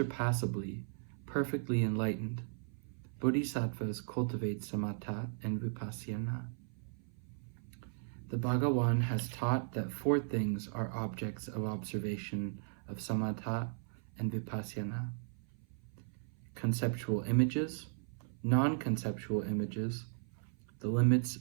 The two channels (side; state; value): left; silent; 53 dB below the other